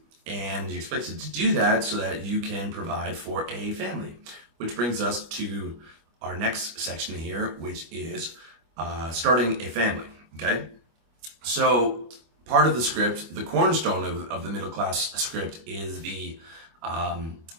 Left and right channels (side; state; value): left; late; 25 ms